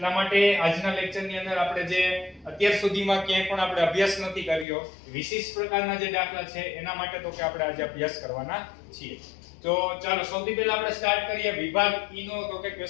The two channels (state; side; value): drops out; right; at 4.7 s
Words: માટે આજના લેક્ચરની અંદર આપણે જે અત્યાર સુધીમાં ક્યાંય પણ આપણે અભ્યાસ નથી કર્યો વિશિષ્ટ પ્રકારના જે દાખલા છે એના માટે તો કે આપણે આજે અભ્યાસ કરવાના છીએ. તો ચાલો સૌથી પહેલા આપણે સ્ટાર્ટ કરીએ વિભાગ ઈ નો. તો કે